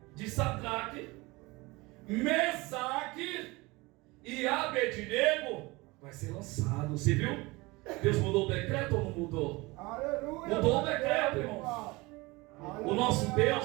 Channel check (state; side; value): quieter; left; 23.2 dB